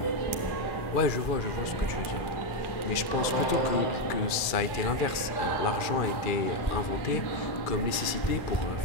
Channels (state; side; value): late; right; 2.3 ms